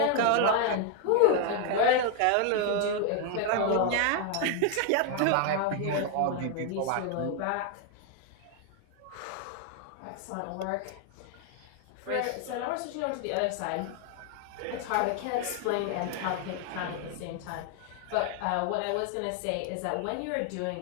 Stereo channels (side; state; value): both; different; correlation 0.00